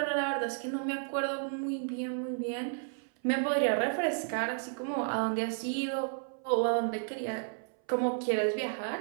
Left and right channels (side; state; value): left; silent; 56 dB below the other